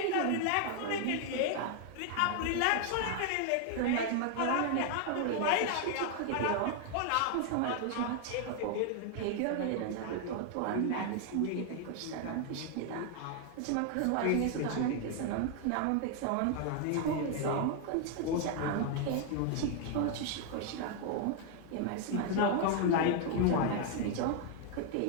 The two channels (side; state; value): both; different; correlation 0.00